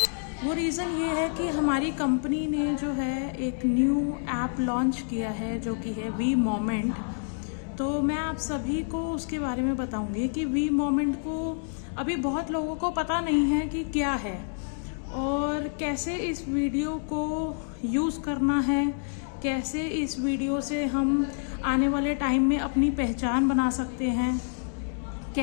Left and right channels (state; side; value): silent; right; digital silence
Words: वो रीज़न ये है कि हमारी कंपनी ने जो है एक न्यू ऐप लॉन्च किया है जो कि है वी मोमेंट। तो मैं आप सभी को उसके बारे में बताऊंगी कि वी मोमेंट को अभी बहुत लोगों को पता नहीं है कि क्या है और कैसे इस वीडियो को यूज़ करना है, कैसे इस वीडियो से हम आने वाले टाइम में अपनी पहचान बना सकते हैं,